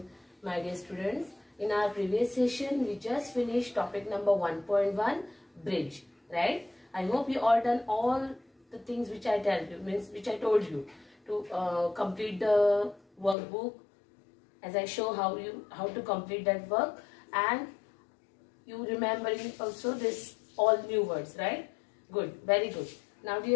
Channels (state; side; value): drops out; right; at 13.4 s